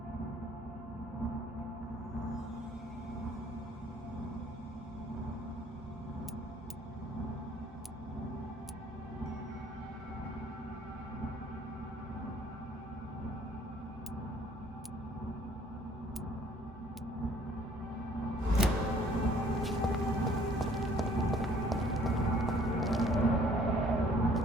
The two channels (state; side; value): normal; both; correlation 0.58